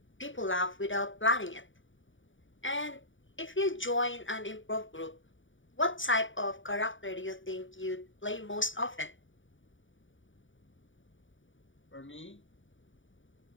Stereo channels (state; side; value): late; right; 0.56 ms